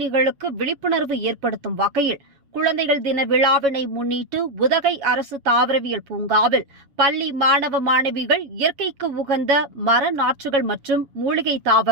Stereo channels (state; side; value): late; left; 7.2 ms